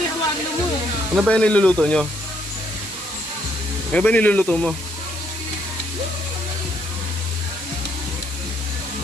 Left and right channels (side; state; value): right; noise; hiss, 12 dB below the sound